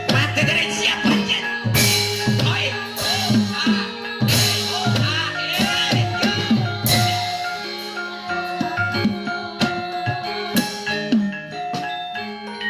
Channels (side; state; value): both; identical; correlation 1.00